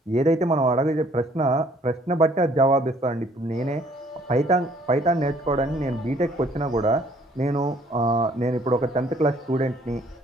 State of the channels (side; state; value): both; normal; correlation 0.60